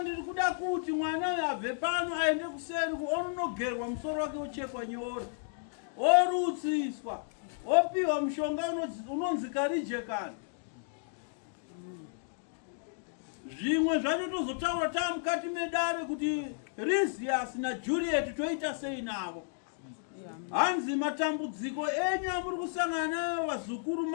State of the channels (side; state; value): right; silent; digital silence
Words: kuda kuti mwana uyu abve pano aende kuseri onogerwa musoro wake ochekwa nyora, orutsiswa, opiwa mushonga unonzi Karijekani. Zvimwe zvacho tozotaura tamukati medare kuti Lysias naJuliet toita sei navo. Hanzi matambudziko enyu amuri kusangana nayo vazukuru